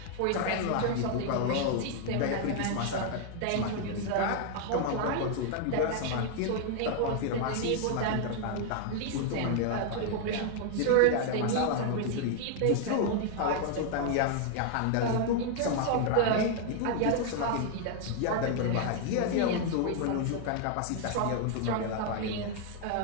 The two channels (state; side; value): different; both; correlation 0.00